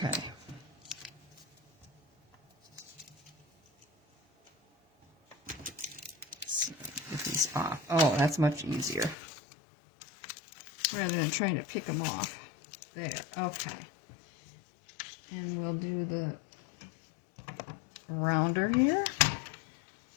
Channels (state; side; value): drops out; right; at 9.2 s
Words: Let's get these off. Oh, that's much easier. Rather than trying to pick them off. There, okay. And we'll do the rounder here.